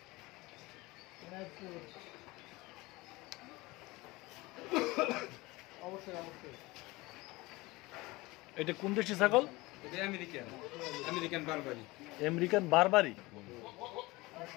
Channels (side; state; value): right; quieter; 21.7 dB